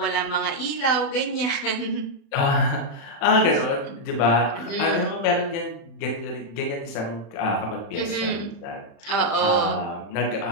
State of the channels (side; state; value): right; late; 35 ms